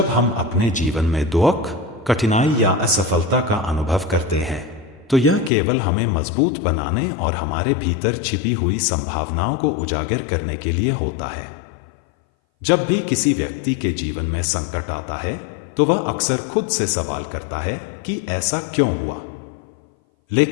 हम अपने जीवन में दुख, कठिनाई या असफलता का अनुभव करते हैं, तो यह केवल हमें मजबूत बनाने और हमारे भीतर छिपी हुई संभावनाओं को उजागर करने के लिए होता है। जब भी किसी व्यक्ति के जीवन में संकट आता है, तो वह अक्सर खुद से सवाल करता है कि ऐसा क्यों हुआ।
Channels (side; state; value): right; drops out; at 5.5 s